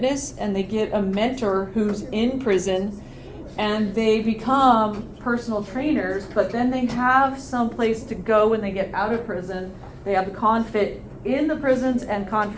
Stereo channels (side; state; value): both; identical; correlation 1.00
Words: and they get a mentor who's in prison, and they become personal trainers, but then they have some place to go when they get out of prison. They have the ConFit in the prisons and